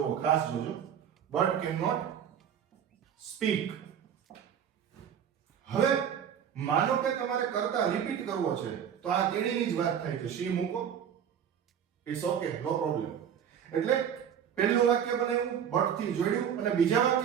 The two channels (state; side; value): quieter; left; 8.6 dB